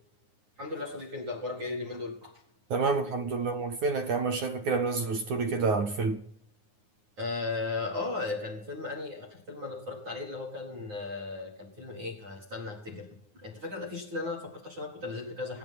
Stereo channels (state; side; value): late; left; 9.6 ms